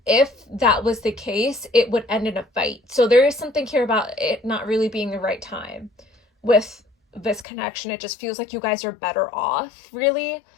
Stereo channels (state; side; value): drops out; right; at 7.5 s